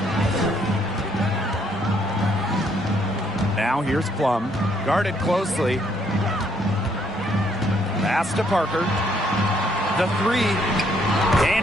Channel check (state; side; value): normal; both; correlation 0.69